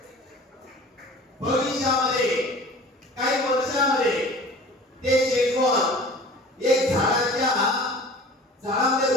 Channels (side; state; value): both; normal; correlation 0.43